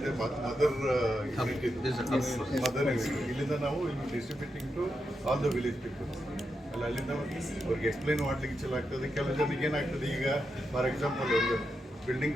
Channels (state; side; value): normal; both; correlation 0.86